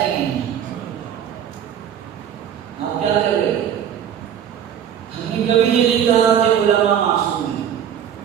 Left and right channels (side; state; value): left; quieter; 9.1 dB